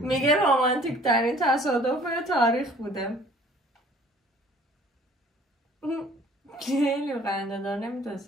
رومانتیک ترین تصادف تاریخ بوده. خیلی خنده دار،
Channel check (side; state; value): both; normal; correlation 0.53